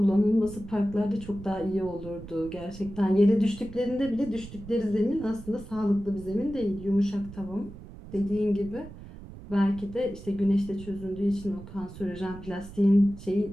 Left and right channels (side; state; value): right; noise; rumble, 15 dB below the sound